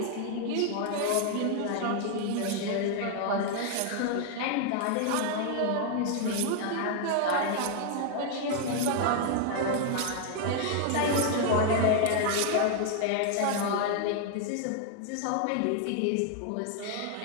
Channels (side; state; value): both; different; correlation 0.00